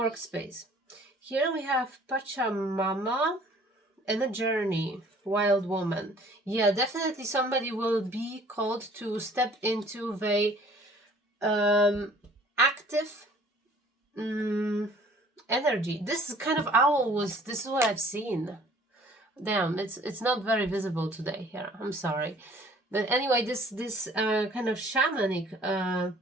Here we have Pachamama and a journey. Wild woman. Yeah, definitely somebody will be called to step into the active energy. This kind of owl this is what I've seen. Damn, it's not very visible today here. I'm sorry. But anyway, this kind of shamanic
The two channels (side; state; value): both; normal; correlation 0.54